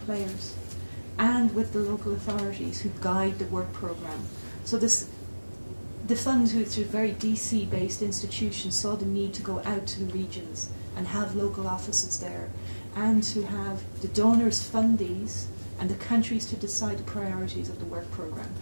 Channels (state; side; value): inverted; both; correlation -1.00